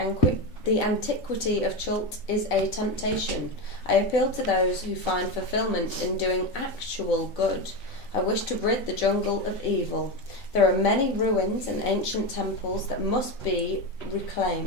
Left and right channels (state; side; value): late; right; 4.1 ms